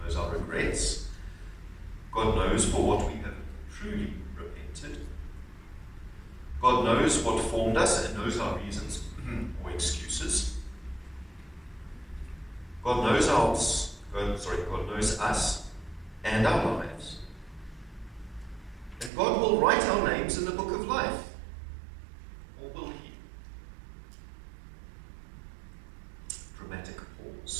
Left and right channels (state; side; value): drops out; left; at 19.1 s